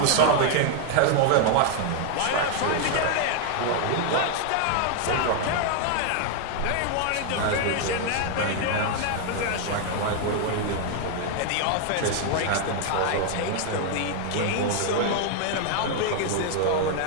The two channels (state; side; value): different; both; correlation 0.00